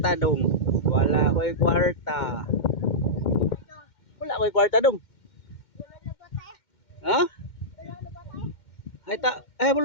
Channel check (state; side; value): late; right; 2.1 ms